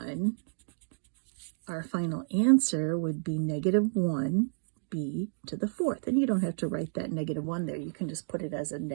our final answer would be negative 1, b to the 4th. And you don't have to write that negative 1 there. You can just put it as a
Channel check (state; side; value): silent; left; digital silence